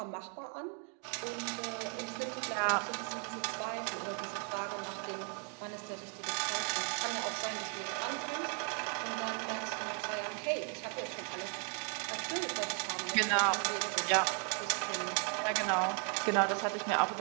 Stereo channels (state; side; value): quieter; left; 38.0 dB